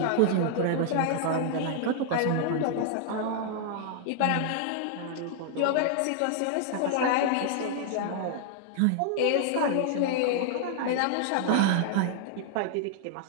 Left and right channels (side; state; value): both; different; correlation -0.01